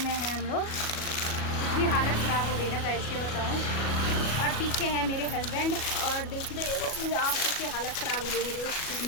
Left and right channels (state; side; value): late; right; 37 ms